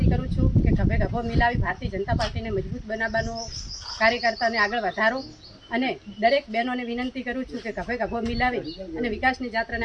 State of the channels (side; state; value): both; identical; correlation 1.00